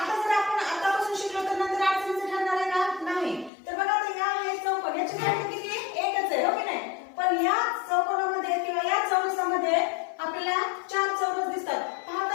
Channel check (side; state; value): right; drops out; at 3.5 s